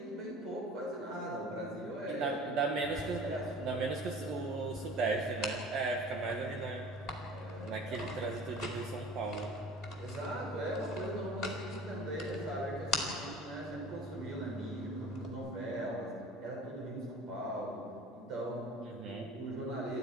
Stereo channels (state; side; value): normal; both; correlation 0.43